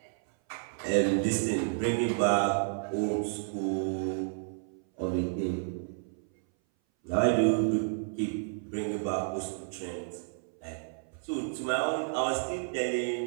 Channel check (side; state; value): left; silent; 57 dB below the other